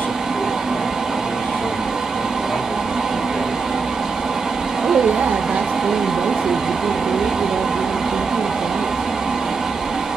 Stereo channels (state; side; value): quieter; left; 4.7 dB